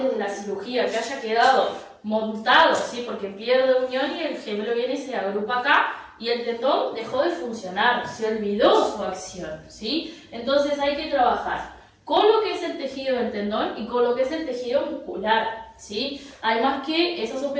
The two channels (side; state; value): both; identical; correlation 1.00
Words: de la cirugía, que haya quedado montado, ¿sí? Porque pierde unión y el gemelo viene y se agrupa acá y el tendón dejó de funcionar, se olvidó su acción, ¿sí? Entonces hay que trabajar con lo que es el tejido del tendón y con lo que es el tejido muscular, ¿sí? Además que esas